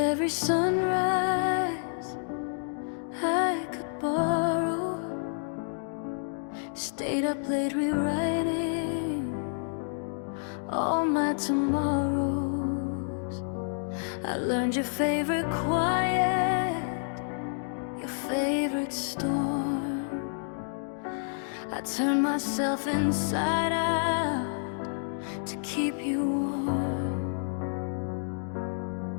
sunrise I could borrow, stayed up late rewriting all my tomorrows. I learned your favorite quiet, your favorite storm. I turned myself inside out to keep you warm.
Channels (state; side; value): silent; right; digital silence